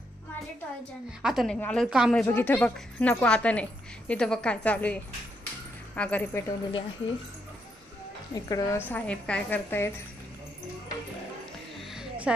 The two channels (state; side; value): normal; both; correlation 0.78